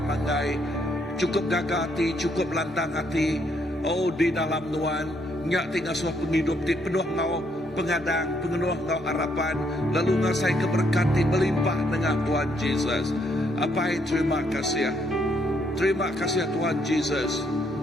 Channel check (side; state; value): both; normal; correlation 0.72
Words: cukup gagah hati, cukup lantang hati. Oh di dalam Nuan nyak tinggal suah penghidup ti penuh ngau pengadang, penuh ngau harapan, lalu ngasai keberkati melimpah dengan Tuhan Jesus. Apa terima kasih. Terima kasih Tuhan Jesus.